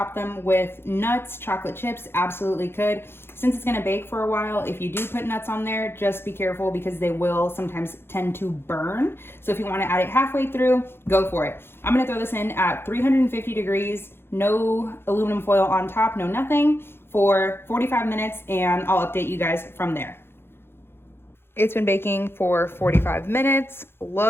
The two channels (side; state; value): right; late; 0.11 ms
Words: them with nuts, chocolate chips, absolutely could. Since it's going to bake for a while, if you do put nuts on there, just be careful because they will sometimes tend to burn. So if you want to add it halfway through, go for it. I'm going to throw this in at 350 degrees, no aluminum foil on top, no nothing, for 45 minutes, and I'll update you guys from there. It's been baking for 45 minutes,